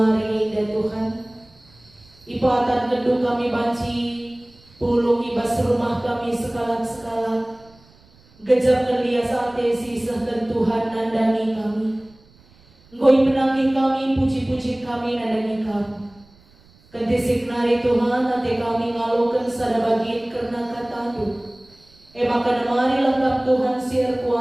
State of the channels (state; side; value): noise; right; rumble, 29 dB below the sound